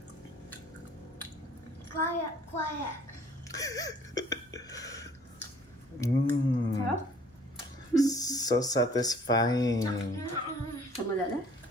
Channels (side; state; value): both; normal; correlation 0.55